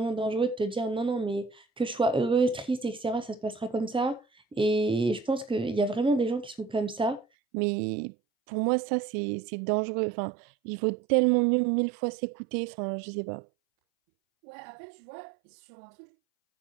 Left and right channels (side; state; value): left; drops out; at 7.2 s